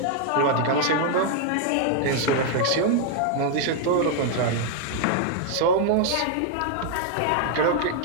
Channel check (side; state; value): both; different; correlation 0.00